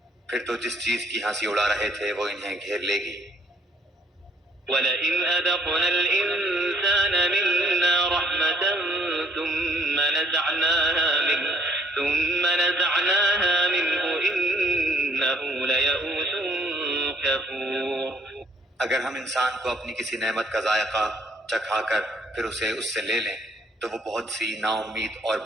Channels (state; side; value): normal; both; correlation 0.64